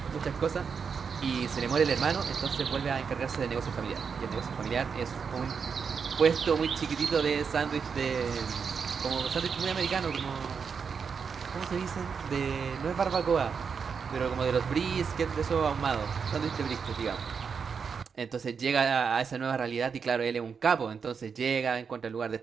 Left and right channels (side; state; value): left; quieter; 6.1 dB